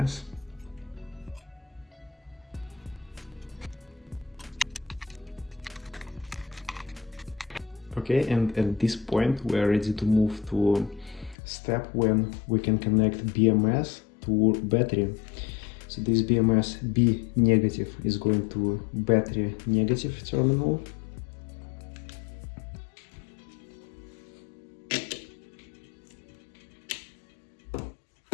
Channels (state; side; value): drops out; right; at 11.4 s